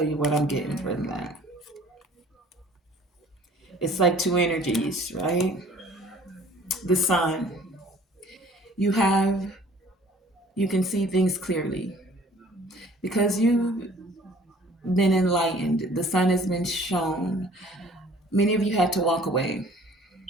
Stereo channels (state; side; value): normal; both; correlation 0.52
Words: you what I'm getting from that. It's like two energies, right? The sun. You can see things clearly because you've been enlightened. The sun has been shown. Many of you had to walk away.